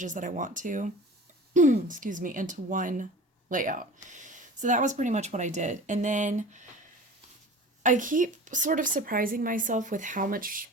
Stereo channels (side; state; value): both; normal; correlation 0.39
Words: that I want to, excuse me, into one layout? So that was pretty much what I did. And then I keep sort of surprising myself with how much